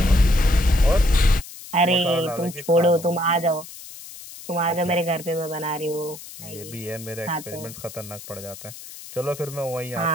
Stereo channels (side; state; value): left; noise; hiss, 15 dB below the sound